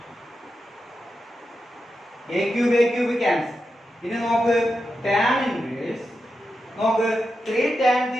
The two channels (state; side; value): normal; both; correlation 0.89